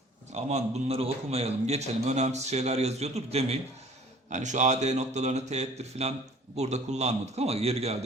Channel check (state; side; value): normal; both; correlation 0.51